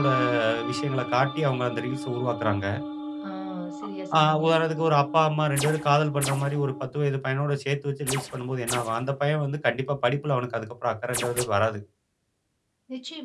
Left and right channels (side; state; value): both; identical; correlation 1.00